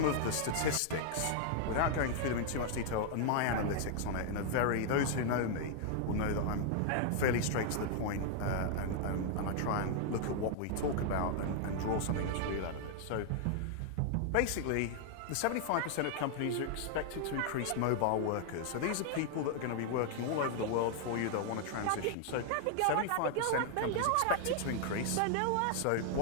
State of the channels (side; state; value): both; different; correlation 0.00